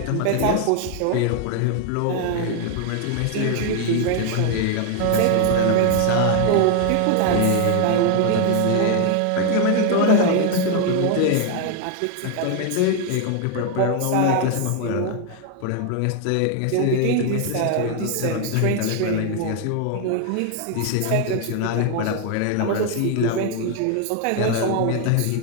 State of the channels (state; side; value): different; both; correlation 0.01